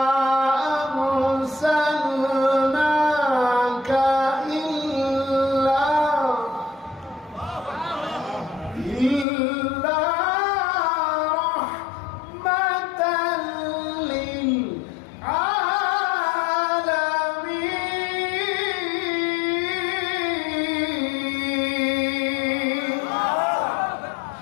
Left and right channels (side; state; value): right; drops out; at 9.2 s